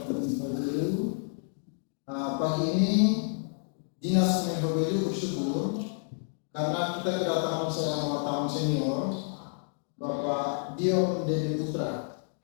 Kominfo. Pagi ini Dinas Kominfo bersyukur karena kita kedatangan seorang wartawan senior, Bapak Dion Dewi Putra.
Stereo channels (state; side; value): silent; right; 58 dB below the other